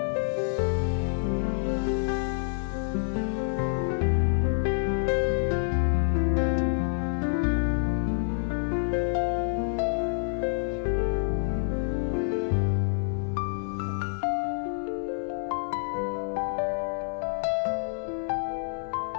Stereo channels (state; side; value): silent; right; digital silence